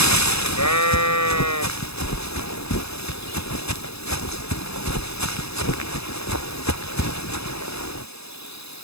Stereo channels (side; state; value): right; late; 0.78 ms